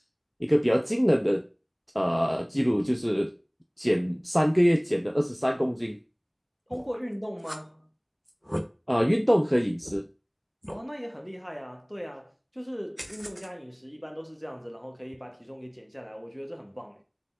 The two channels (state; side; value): identical; both; correlation 1.00